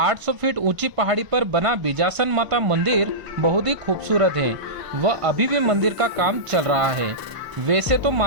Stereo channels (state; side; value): late; left; 1.0 ms